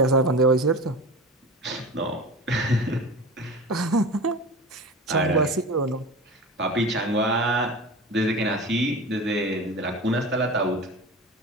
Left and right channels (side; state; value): both; normal; correlation 0.31